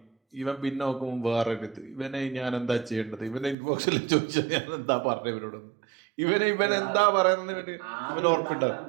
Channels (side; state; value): left; drops out; at 3.6 s